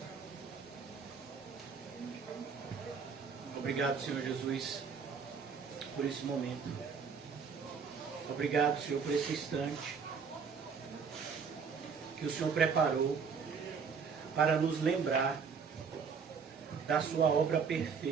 Obrigado, Senhor Jesus, por esse momento. Obrigado, Senhor, por esse instante que o Senhor preparou para nos lembrar da sua obra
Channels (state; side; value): quieter; left; 5.9 dB